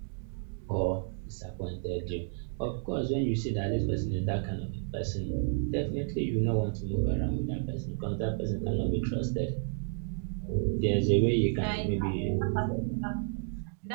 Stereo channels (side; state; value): left; silent; 57 dB below the other